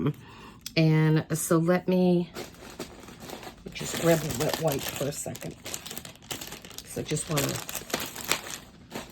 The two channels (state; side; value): identical; both; correlation 1.00